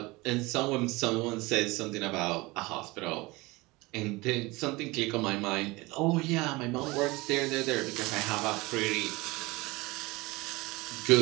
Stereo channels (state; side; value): quieter; left; 22.6 dB